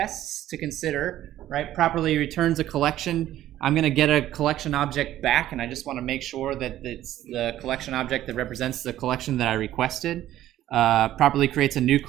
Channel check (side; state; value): left; quieter; 13.2 dB